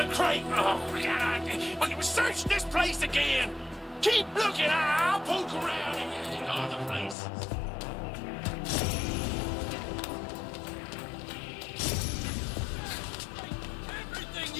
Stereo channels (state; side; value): drops out; right; at 7.2 s